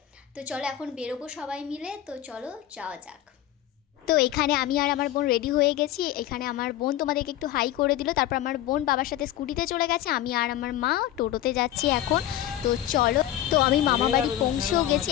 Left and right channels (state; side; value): quieter; right; 12.7 dB